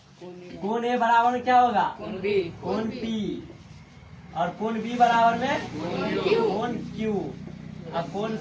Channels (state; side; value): identical; both; correlation 1.00